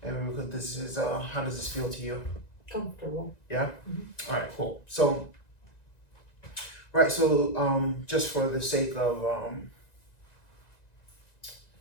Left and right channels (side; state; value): right; late; 1.9 ms